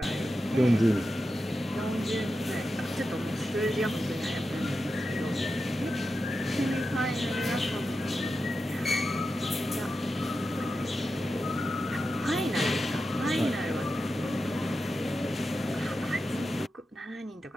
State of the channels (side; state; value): both; normal; correlation 0.90